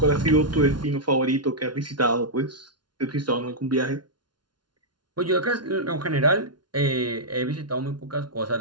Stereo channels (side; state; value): left; late; 0.70 ms